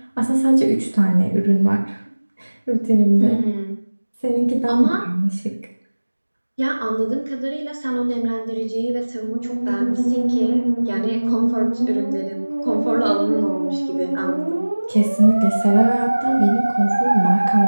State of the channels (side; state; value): both; inverted; correlation -1.00